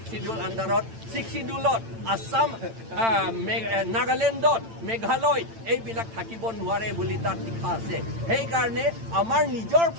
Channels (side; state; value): left; late; 8.9 ms